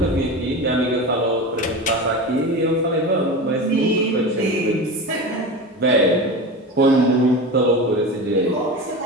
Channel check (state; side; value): normal; both; correlation 0.27